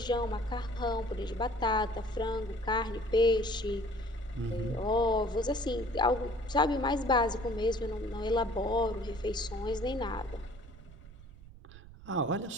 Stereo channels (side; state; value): right; noise; rumble, 18 dB below the sound